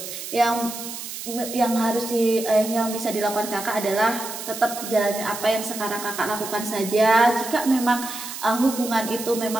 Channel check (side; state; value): right; noise; hiss, 9 dB below the sound